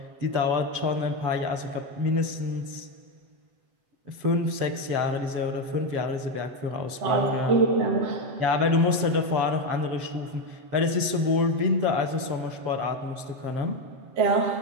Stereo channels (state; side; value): late; left; 7.7 ms